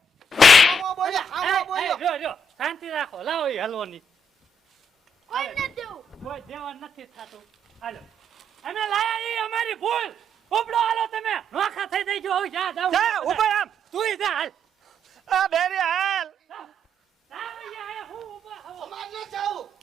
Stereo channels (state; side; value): normal; both; correlation 0.73